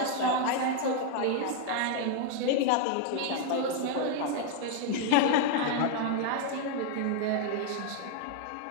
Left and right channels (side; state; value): both; different; correlation 0.01